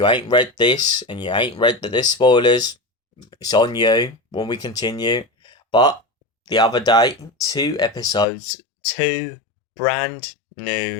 ain't read this and you ain't read that there's spoilers, it's on you when we continue. But the other day, two brand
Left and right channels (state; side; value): drops out; right; at 8.2 s